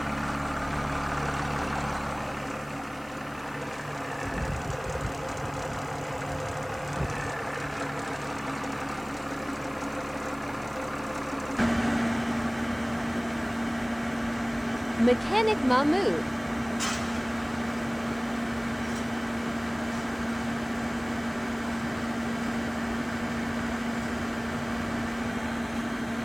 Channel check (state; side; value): noise; left; hiss, 24 dB below the sound